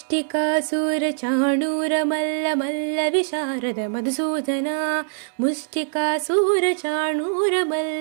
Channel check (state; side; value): silent; left; digital silence